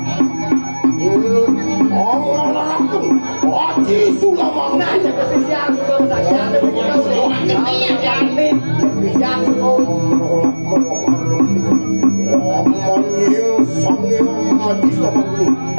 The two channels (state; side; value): inverted; both; correlation -1.00